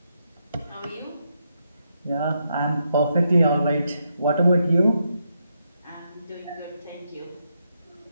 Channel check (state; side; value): inverted; both; correlation -0.81